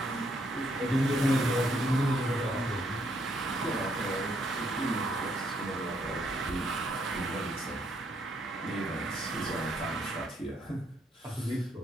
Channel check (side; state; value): both; normal; correlation 0.72